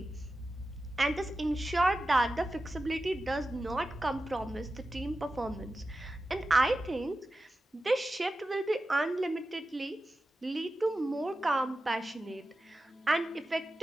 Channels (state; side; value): normal; both; correlation 0.92